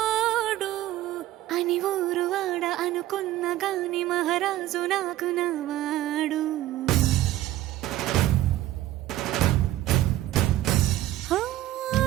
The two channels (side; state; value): left; quieter; 14.6 dB